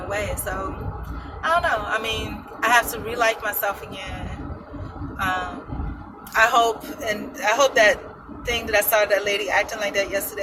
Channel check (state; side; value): identical; both; correlation 1.00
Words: So, I don't know. I have to re-like myself again. I hope that thing that I saw that lady acting like that